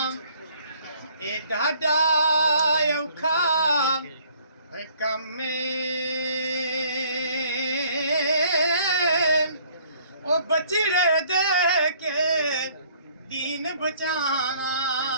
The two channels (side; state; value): both; inverted; correlation -0.59